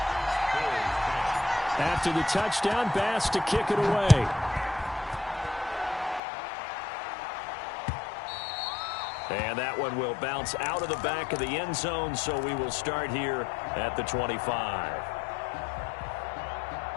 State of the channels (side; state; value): right; drops out; at 6.2 s